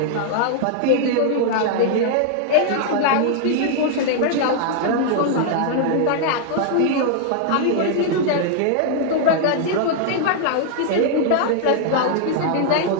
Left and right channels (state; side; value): different; both; correlation 0.00